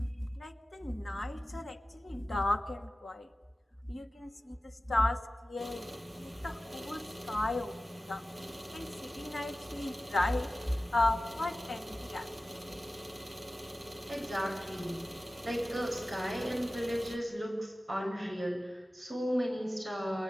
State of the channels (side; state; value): both; normal; correlation 0.96